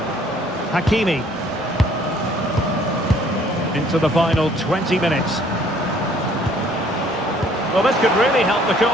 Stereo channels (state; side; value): normal; both; correlation 0.60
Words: Hakimi. Into the final 20 minutes. Well, this could really help the